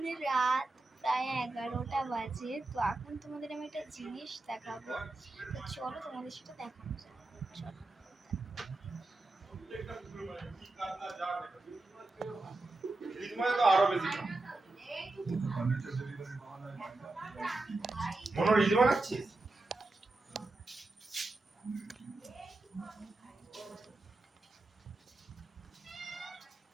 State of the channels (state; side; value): quieter; left; 3.0 dB